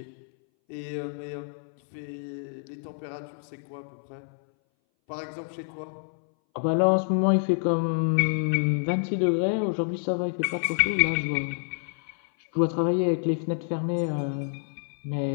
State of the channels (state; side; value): silent; right; 60 dB below the other